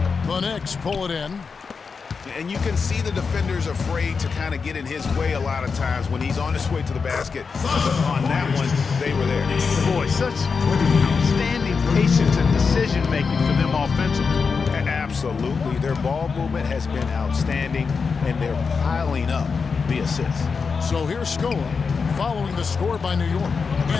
The Knicks pull it in. And you can see the defenders afraid to kind of get in his way a lot of times when he's on his way to the basket. On that one, they were there. Boy, such outstanding patience and decision-making for them offensively. Absolutely. Their ball movement has been outstanding, and they're piling up the assists. So here's Scola following the score by New York.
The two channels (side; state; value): right; quieter; 5.2 dB